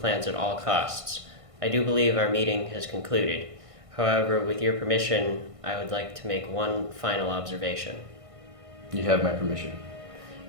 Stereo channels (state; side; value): late; left; 1.5 ms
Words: at all costs. I do believe our meeting has concluded. However, with your permission, I would like to make one final observation. You have my permission.